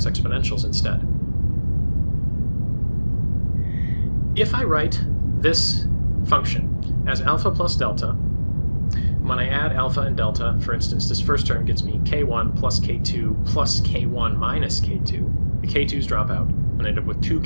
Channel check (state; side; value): inverted; both; correlation -1.00